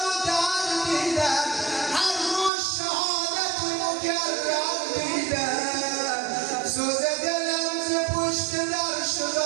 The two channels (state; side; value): drops out; left; at 2.5 s